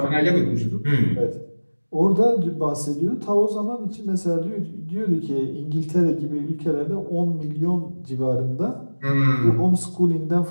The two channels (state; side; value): inverted; both; correlation -1.00